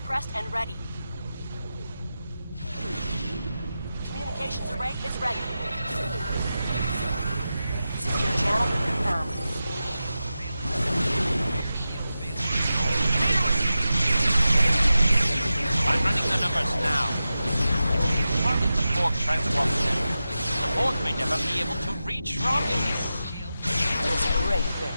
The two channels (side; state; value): both; inverted; correlation -0.92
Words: and ready. Communications array is ready. Secure channel confirmed. I'm running the numbers now. Target the Borg transport center. The Borg may never be able to reach Romulus. It's a great